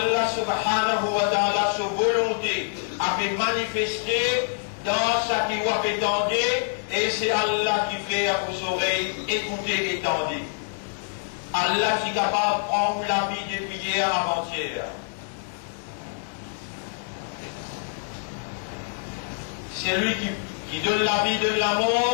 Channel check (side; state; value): right; silent; digital silence